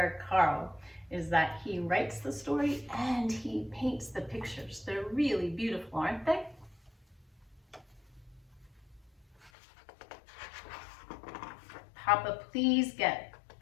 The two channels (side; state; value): right; drops out; at 9.5 s